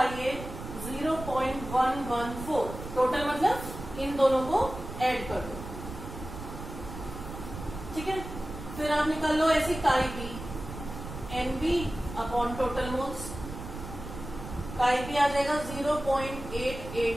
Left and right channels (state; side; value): noise; right; rumble, 10 dB below the sound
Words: ए 0.114। टोटल मतलब इन दोनों को ऐड कर दो। ठीक है, फिर आप निकाल लो ऐसी काई बी, NB टोटल मोल्स, काई बी आ जाएगा